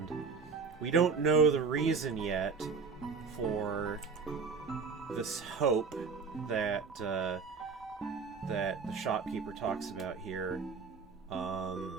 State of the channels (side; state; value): left; quieter; 5.2 dB